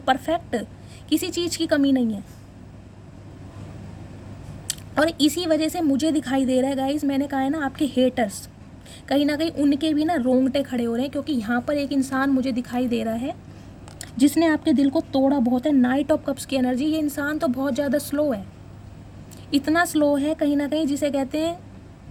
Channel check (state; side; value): identical; both; correlation 1.00